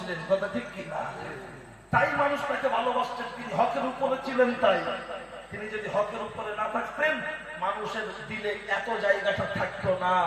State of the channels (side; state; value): both; identical; correlation 1.00